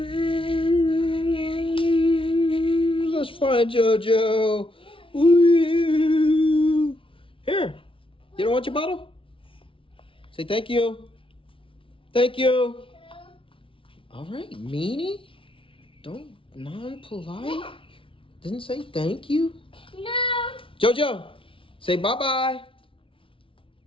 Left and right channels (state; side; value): late; right; 0.25 ms